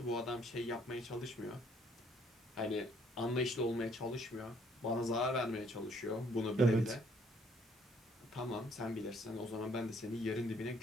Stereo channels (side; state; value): both; normal; correlation 0.64